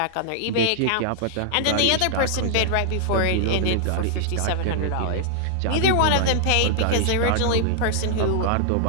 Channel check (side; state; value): both; different; correlation -0.01